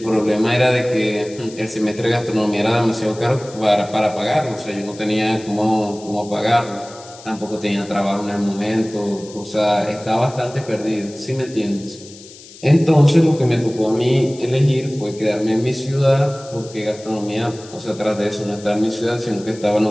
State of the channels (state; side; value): noise; left; hiss, 19 dB below the sound